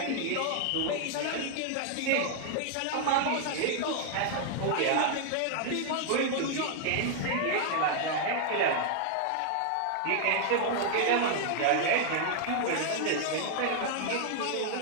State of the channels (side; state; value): both; different; correlation 0.00